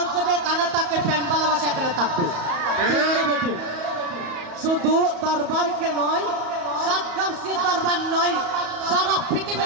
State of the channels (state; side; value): late; left; 34 ms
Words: যদি এখানে থাকে প্রেম ভালোবাসা এখানে থাকবে, ঠিক না বেটে? শুধু দরবারকে নয়, সাতগাঁওসের দরবার নয়, সারা